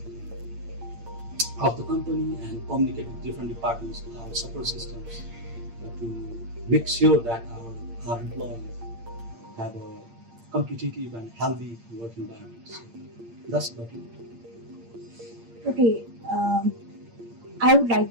of the company and communicate with different departments, our support systems, to make sure that our employees have a competitive and healthy work environment. So that's about it. Okay, I would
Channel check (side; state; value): left; late; 8.7 ms